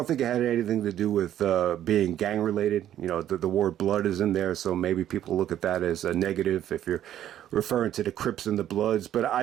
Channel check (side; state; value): left; quieter; 11.4 dB